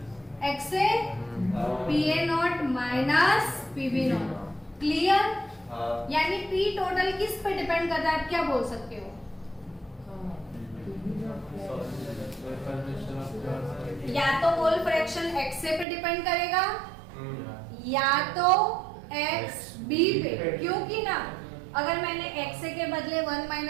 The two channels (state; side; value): drops out; left; at 15.9 s